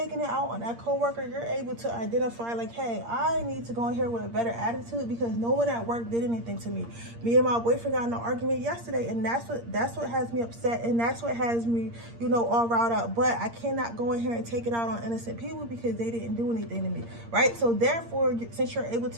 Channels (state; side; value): late; left; 8.6 ms